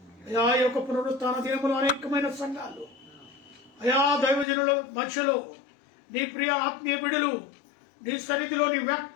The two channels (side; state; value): right; drops out; at 4.5 s